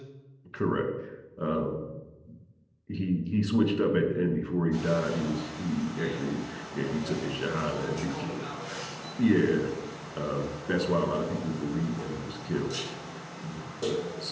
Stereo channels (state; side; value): identical; both; correlation 1.00